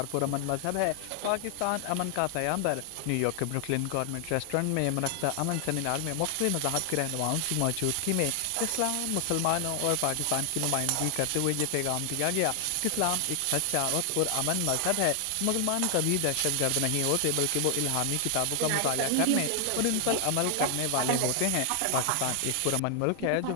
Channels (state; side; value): different; both; correlation 0.00